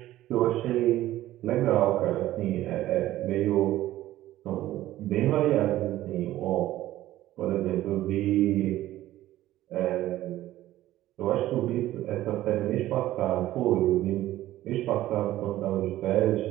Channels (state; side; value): quieter; left; 14.7 dB